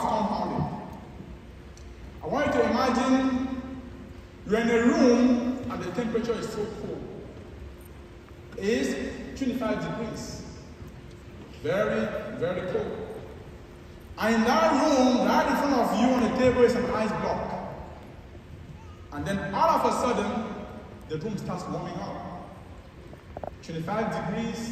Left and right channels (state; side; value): identical; both; correlation 1.00